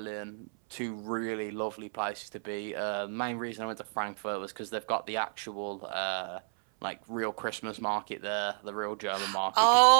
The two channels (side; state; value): left; silent; 57 dB below the other